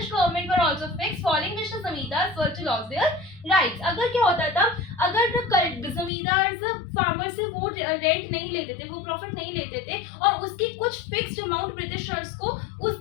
government were also fixed following which the zamindars were to lose their rights. अगर क्या होता था, अगर जमींदार फार्मर से वो रेंट नहीं लेते थे, वो प्रॉफिट नहीं लेते थे और उसकी कुछ फिक्स्ड अमाउंट ब्रिटिशर्स को उस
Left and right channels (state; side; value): drops out; right; at 6.1 s